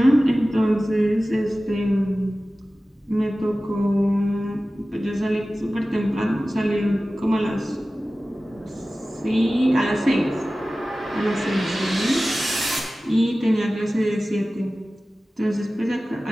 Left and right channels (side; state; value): both; normal; correlation 0.96